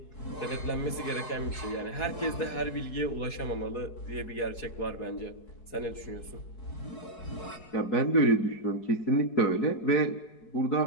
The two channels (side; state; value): right; late; 4.7 ms